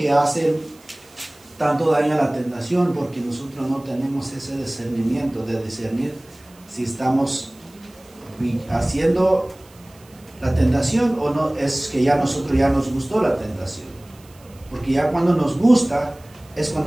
hace tanto daña la tentación porque nosotros no tenemos ese discernimiento de discernir si estamos haciendo la tentación o no, es que ya nosotros ya nos gustó la tentación. Porque ya cuando nos gusta es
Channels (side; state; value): right; noise; hiss, 27 dB below the sound